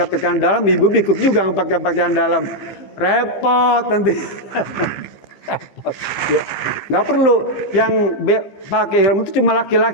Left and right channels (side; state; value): right; late; 15 ms